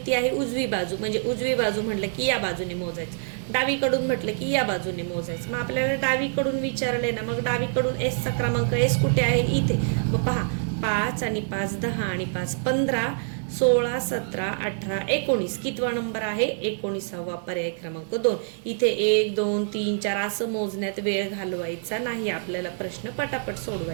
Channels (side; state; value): left; silent; digital silence